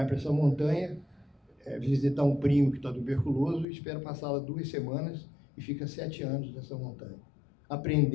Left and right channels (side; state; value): right; drops out; at 3.7 s